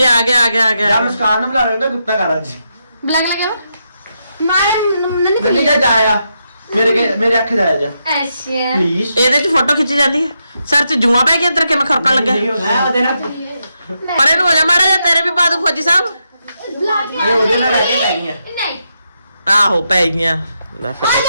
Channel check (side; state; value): both; inverted; correlation -0.83